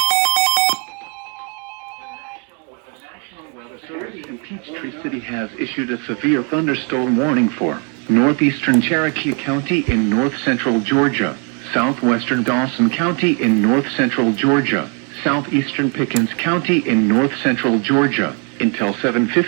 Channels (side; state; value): left; quieter; 37.1 dB